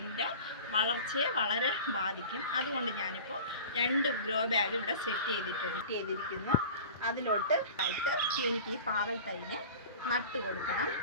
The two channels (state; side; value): inverted; both; correlation -0.38